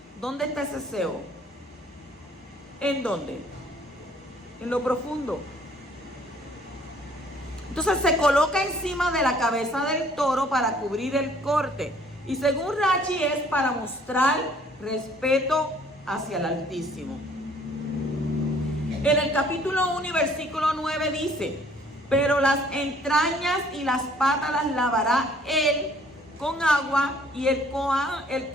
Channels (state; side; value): normal; both; correlation 0.59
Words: ¿Dónde está ese sebo? ¿En dónde? En lo profundo. Entonces se coloca encima de la cabeza del toro para cubrir el corte. Y según Rashi es para mostrar respeto hacia el Altísimo. En el capítulo 1 y versículo 9 dice: pero las entrañas y las patas las lavará él con agua, y el